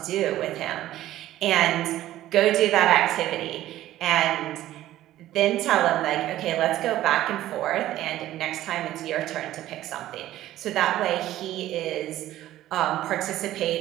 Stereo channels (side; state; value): left; quieter; 14.1 dB